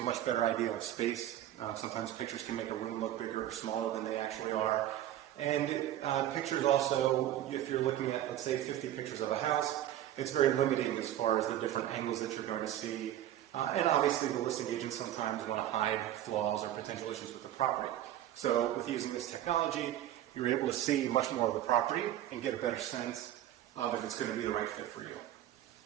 a much better idea of space. Sometimes pictures can make a room look bigger or smaller than they actually are. And pictures also, if you're looking at, let's say, 50 pictures of a house, it's very limiting as far as the different angles that you're going to see. And obviously the listing agents sometimes want to hide flaws or potential issues with the property. So with using this technology, you're able to see much more of the property and get a better sense of if it's going to be the right fit for you.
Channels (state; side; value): quieter; left; 12.4 dB